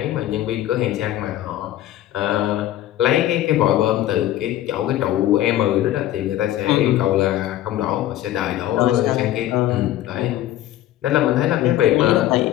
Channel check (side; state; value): right; quieter; 13.4 dB